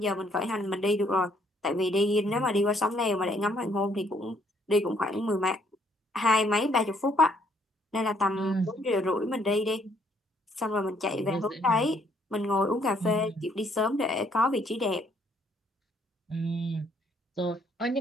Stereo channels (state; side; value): normal; both; correlation 0.67